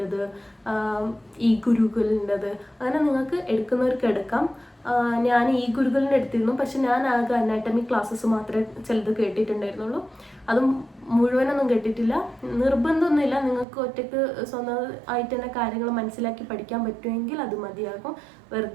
ഈ ഗുരുകുലിൻ്റെത്. അങ്ങനെ നിങ്ങൾക്ക് എടുക്കുന്നവർക്ക് എടുക്കാം. ഞാൻ ഈ ഗുരുകുലിൻ്റെ എടുത്തിരുന്നു, പക്ഷെ ഞാൻ ആകെ അനാട്ടമി ക്ലാസ്സസ് മാത്രമേ ചിലത് കേട്ടിട്ടുണ്ടായിരുന്നുള്ളൂ. അതും മുഴുവനൊന്നും കേട്ടിട്ടില്ല. നിർബന്ധമൊന്നുമില്ല, നിങ്ങൾക്ക് ഒറ്റയ്ക്ക് സ്വന്തമായിട്ട് തന്നെ കാര്യങ്ങൾ മനസ്സിലാക്കി പഠിക്കാൻ പറ്റുമെങ്കിൽ അത് മതിയാകും.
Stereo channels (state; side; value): drops out; left; at 13.7 s